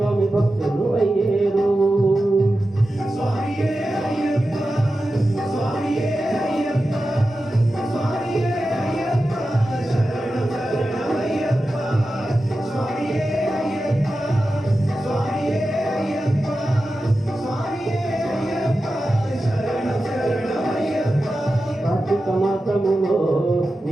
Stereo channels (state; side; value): normal; both; correlation 0.92